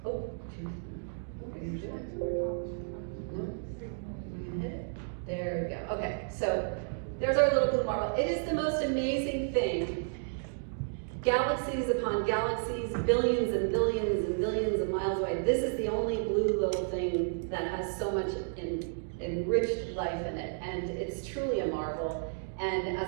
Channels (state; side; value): silent; left; digital silence